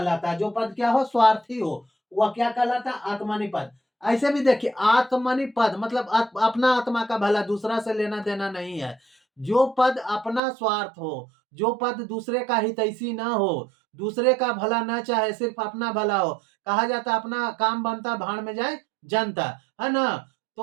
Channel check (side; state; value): left; drops out; at 10.4 s